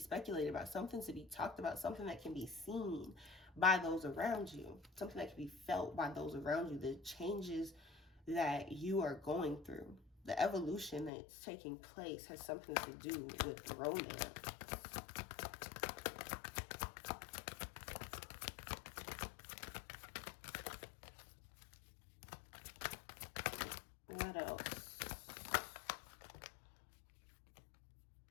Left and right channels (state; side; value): drops out; right; at 11.1 s